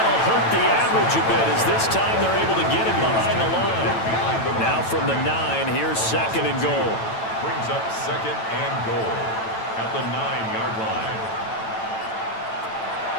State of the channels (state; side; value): late; right; 9.0 ms